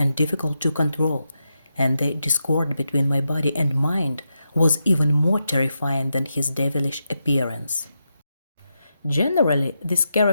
difficult to control, and the discord between my body and mind was even more terrifying than his devilish appearance. Generally, this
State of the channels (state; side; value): inverted; both; correlation -0.86